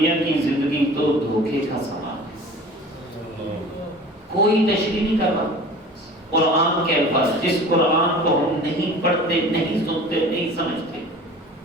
کی زندگی تو دھوکے کا سامان ہے، کوئی تشریح نہیں کر رہا۔ قرآن کے الفاظ، جس قرآن کو ہم نہیں پڑھتے، نہیں سنتے، نہیں سمجھتے،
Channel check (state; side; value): normal; both; correlation 0.42